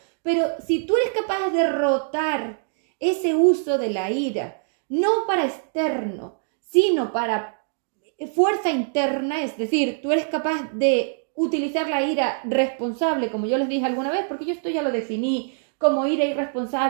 Pero si tú eres capaz de derrotar ese uso de la ira, no para externo, sino para fuerza interna, es decir, tú eres capaz de utilizar la ira responsable, como yo les dije alguna vez, porque yo esto ya lo definí como ira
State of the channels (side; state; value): left; silent; digital silence